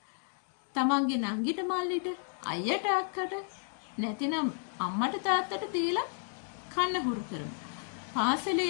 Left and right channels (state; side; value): silent; right; 56 dB below the other